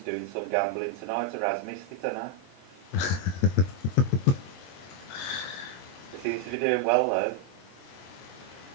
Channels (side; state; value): right; late; 22 ms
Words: some gambling tonight, or has missed it, I know. They seem to be doing well though.